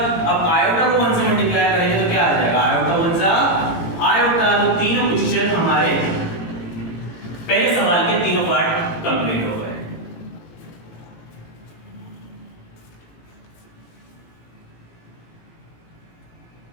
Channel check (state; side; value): late; right; 17 ms